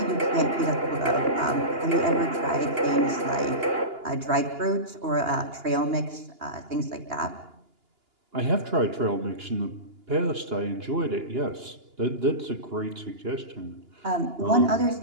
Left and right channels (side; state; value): left; late; 2.9 ms